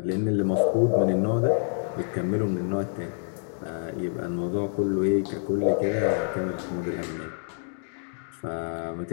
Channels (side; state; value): right; silent; digital silence